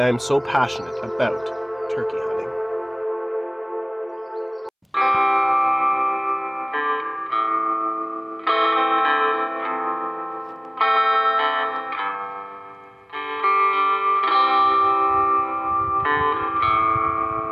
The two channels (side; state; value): both; identical; correlation 1.00